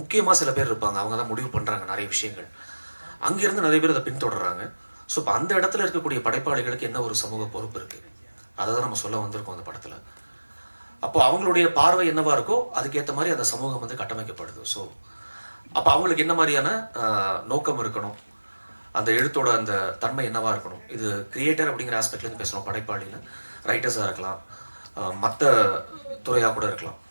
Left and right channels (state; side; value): inverted; both; correlation -1.00